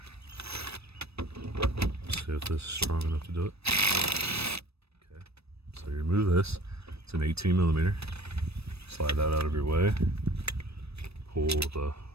See if this is strong enough to do it. Okay, so you remove this. It's an 18mm. Slide that out of your way. Pull the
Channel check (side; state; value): left; late; 0.78 ms